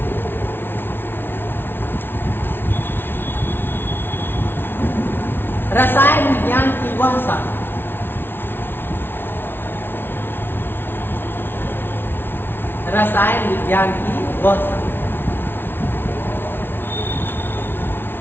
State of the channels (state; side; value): late; right; 0.11 ms